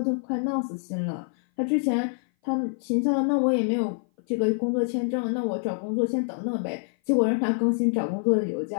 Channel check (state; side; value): silent; right; 57 dB below the other